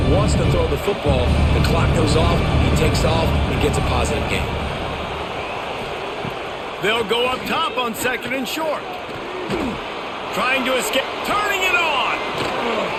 wants to throw the football. The clock goes off, he takes off, and gets a positive gain. They'll go up top on second and short. Trying to escape, turning it on.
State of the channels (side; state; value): both; identical; correlation 1.00